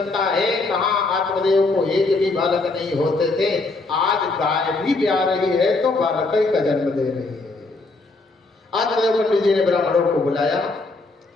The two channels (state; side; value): quieter; right; 3.4 dB